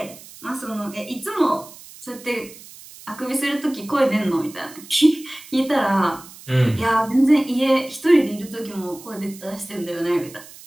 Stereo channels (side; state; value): right; noise; hiss, 19 dB below the sound